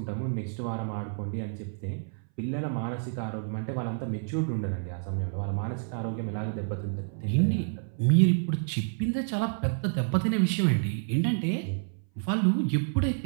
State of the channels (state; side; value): silent; left; 59 dB below the other